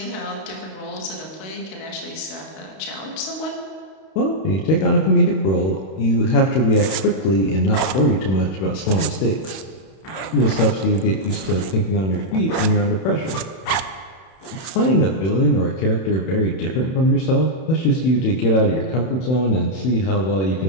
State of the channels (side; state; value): right; late; 31 ms